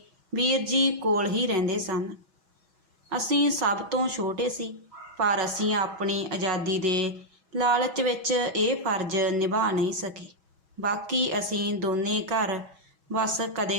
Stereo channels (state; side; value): late; left; 6.3 ms